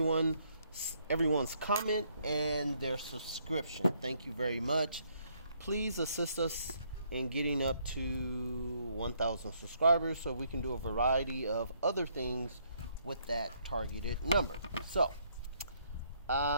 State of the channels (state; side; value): inverted; both; correlation -0.70